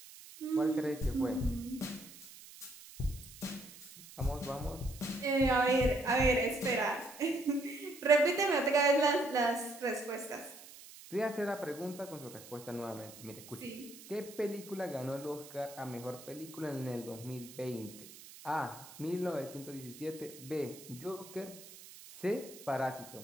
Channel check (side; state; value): right; noise; hiss, 17 dB below the sound